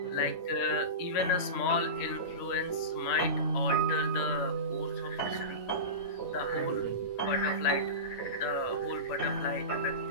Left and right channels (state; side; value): late; right; 10 ms